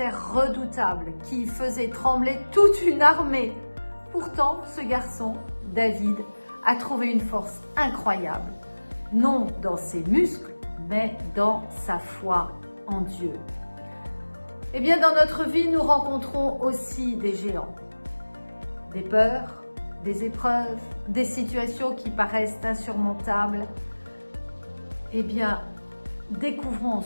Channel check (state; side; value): inverted; both; correlation -1.00